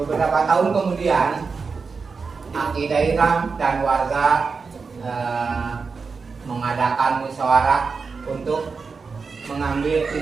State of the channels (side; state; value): left; quieter; 4.9 dB